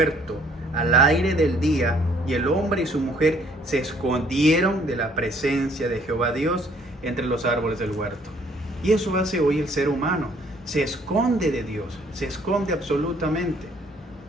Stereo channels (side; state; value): both; normal; correlation 0.62